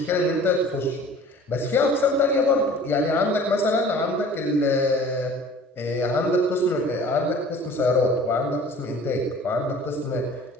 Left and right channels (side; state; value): both; normal; correlation 0.47